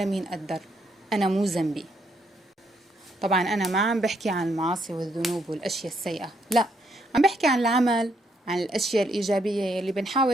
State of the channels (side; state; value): both; normal; correlation 0.74